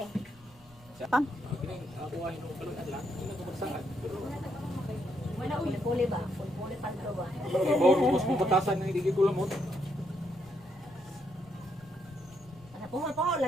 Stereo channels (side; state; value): left; noise; rumble, 25 dB below the sound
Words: Pam. Wala uli ba? Uli padro ba? Bawo mas pupatasan ng hindi ko lamot. Ano po